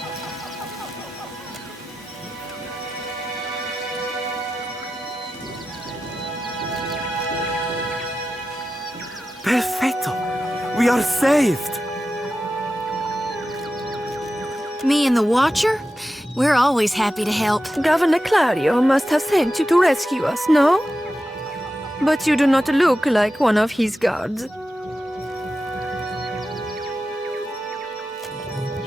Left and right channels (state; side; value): normal; both; correlation 0.92